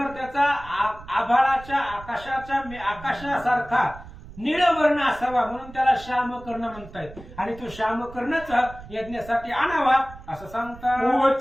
त्याचा आभाळाच्या आकाशासारखा निळवर्ण असावा, म्हणून त्याला श्यामकर्ण म्हणतायत. आणि तो श्यामकर्णच यज्ञासाठी आणावा असं सांगतात.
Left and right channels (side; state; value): right; noise; rumble, 17 dB below the sound